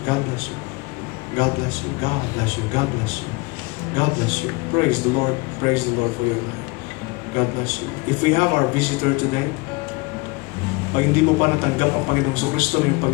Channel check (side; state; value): right; quieter; 26.4 dB